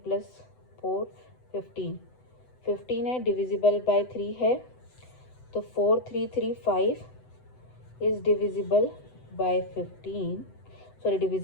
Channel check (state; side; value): late; right; 7.9 ms